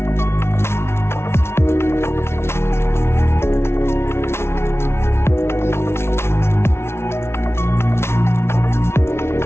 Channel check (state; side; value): late; right; 0.12 ms